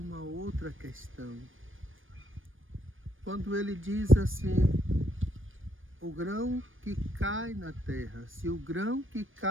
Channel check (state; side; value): late; left; 0.58 ms